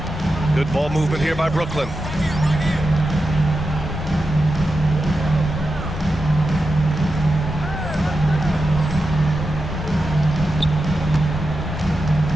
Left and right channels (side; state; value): both; normal; correlation 0.90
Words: Good ball movement here by Brooklyn.